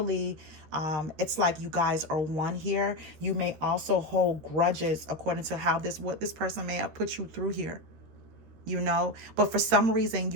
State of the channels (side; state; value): left; late; 13 ms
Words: it's like you guys are one here. You may also hold grudges according to how what this person may have put you through here, you know, but for some reason